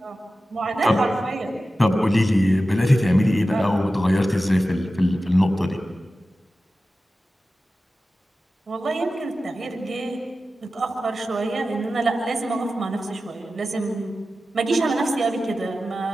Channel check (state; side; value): normal; both; correlation 0.94